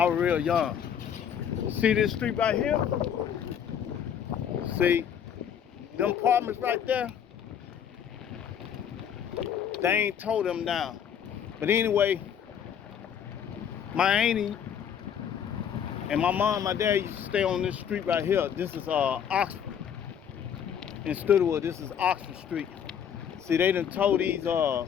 was real young. See this street right here? See them apartments right there? They ain't tore them down. But anyway, my auntie and my mom and my dad used to stay on this street right here. This is Oxford. In Studewood, this is Oxford Street. See, they done tore these, I'm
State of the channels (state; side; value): quieter; right; 8.5 dB